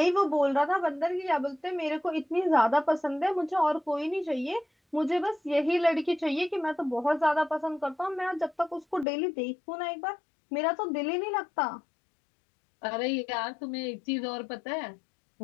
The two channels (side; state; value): right; drops out; at 9.1 s